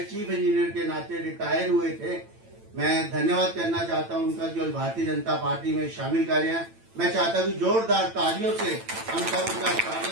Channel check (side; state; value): left; late; 8.9 ms